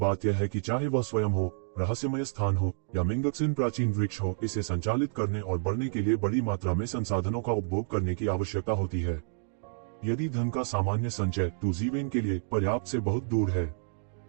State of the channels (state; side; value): silent; left; digital silence